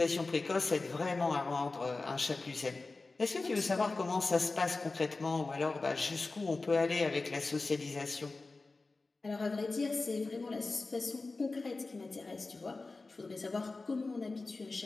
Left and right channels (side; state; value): right; quieter; 3.6 dB